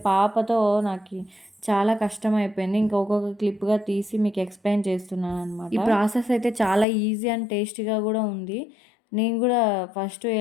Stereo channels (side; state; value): right; drops out; at 6.9 s